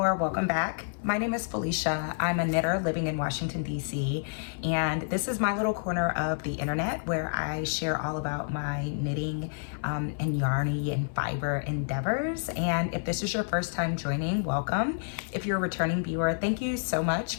welcome back. My name is Felicia. I'm a knitter living in Washington, D.C. And this is my little corner of the internet where I share all about my knitting and yarny and fiber endeavors. And if this is your first time joining, welcome. If you're a returning viewer, thank you so much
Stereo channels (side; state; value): right; silent; 59 dB below the other